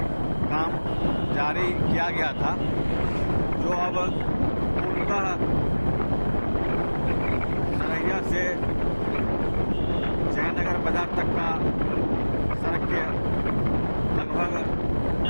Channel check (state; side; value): inverted; both; correlation -1.00